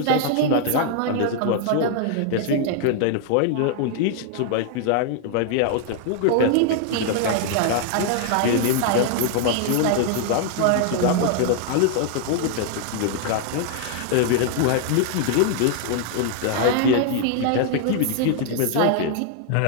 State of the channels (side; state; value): both; different; correlation 0.00